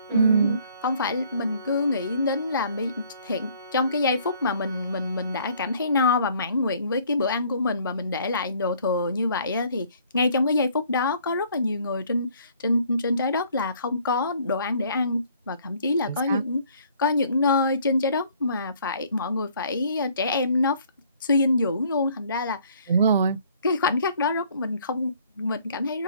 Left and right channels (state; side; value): inverted; both; correlation -0.59